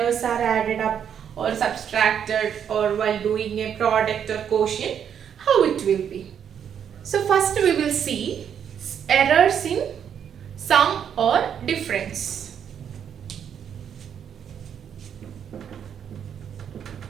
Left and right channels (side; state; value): left; quieter; 8.4 dB